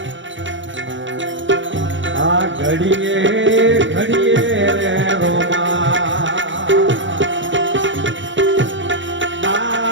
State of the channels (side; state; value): left; late; 0.55 ms